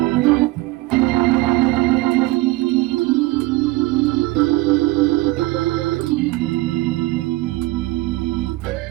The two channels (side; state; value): left; quieter; 19.3 dB